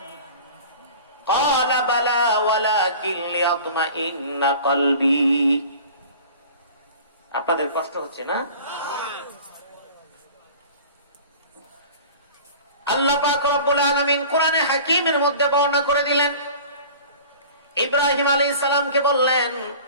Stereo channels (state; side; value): inverted; both; correlation -0.42